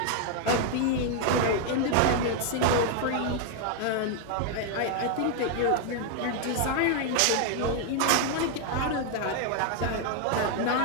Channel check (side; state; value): both; different; correlation 0.00